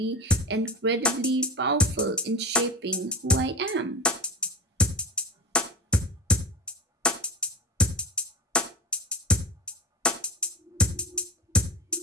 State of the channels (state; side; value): normal; both; correlation 0.27